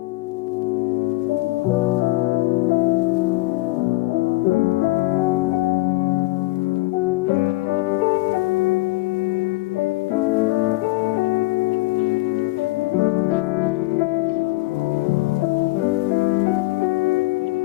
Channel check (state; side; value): quieter; right; 20.9 dB